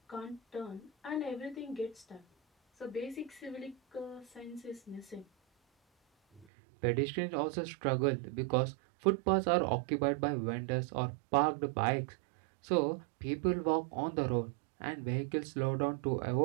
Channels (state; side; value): drops out; left; at 6.5 s